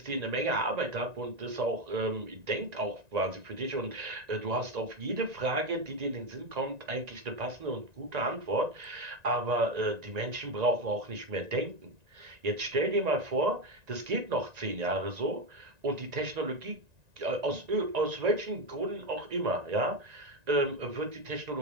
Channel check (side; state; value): left; late; 1.9 ms